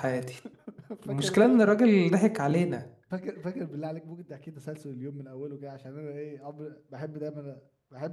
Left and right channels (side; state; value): both; identical; correlation 1.00